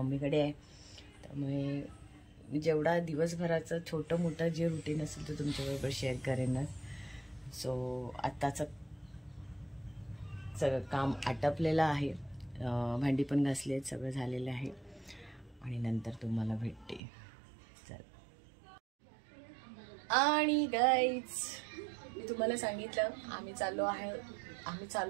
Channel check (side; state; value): left; drops out; at 17.0 s